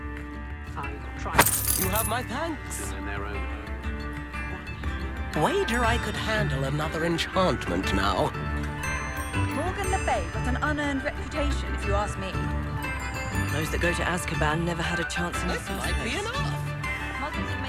You have my thanks. Wager I could handle another enchantment now. Morgan Le Fay got an unearned reputation, if you ask me. Those that go to Azkaban never had a chance in the first Might be place. enough.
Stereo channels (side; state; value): both; identical; correlation 1.00